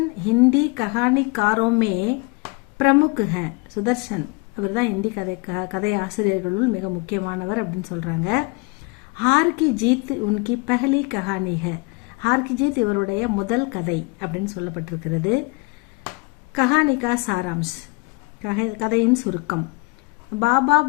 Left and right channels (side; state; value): right; quieter; 27.7 dB